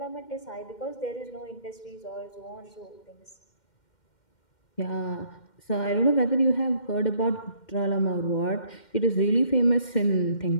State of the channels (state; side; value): late; right; 2.1 ms